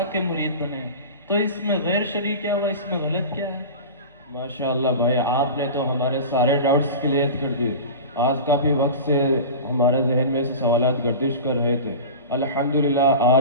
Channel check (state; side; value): inverted; both; correlation -0.31